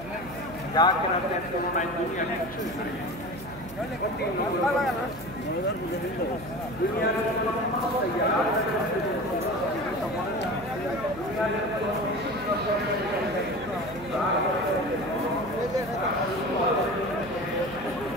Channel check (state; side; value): noise; right; hum, 15 dB below the sound